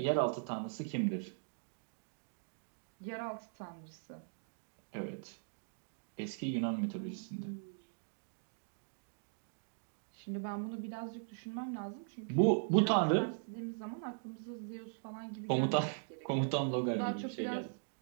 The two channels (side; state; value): left; silent; digital silence